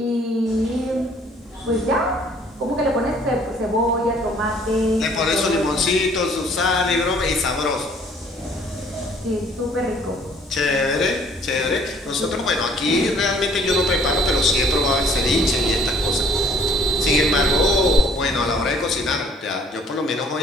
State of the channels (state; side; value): normal; both; correlation 0.60